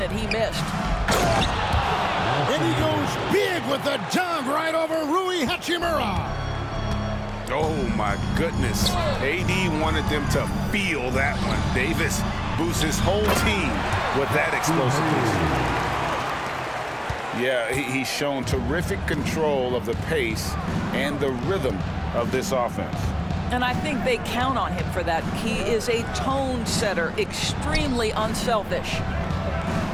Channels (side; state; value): both; identical; correlation 1.00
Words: he missed. And he goes big with the dunk right over Rui Hachimura. Oh, my goodness. AD wanted them to feel that one. Davis boosts his whole team with that explosiveness. Yeah, he's shown terrific control of the pace and the rhythm of this offense. And I think they count on him for that. He is a tone setter, extremely unselfish.